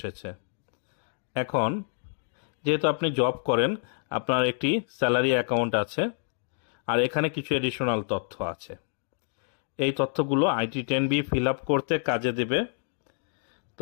এখন যেহেতু আপনি জব করেন, আপনার একটি স্যালারি অ্যাকাউন্ট আছে আর এখানে কিছু এডিশনাল তথ্য আছে। এই তথ্যগুলো IT10B ফিল আপ করতে কাজে দেবে।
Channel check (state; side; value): silent; right; digital silence